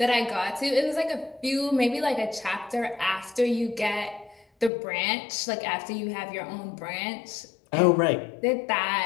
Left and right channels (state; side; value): drops out; right; at 4.7 s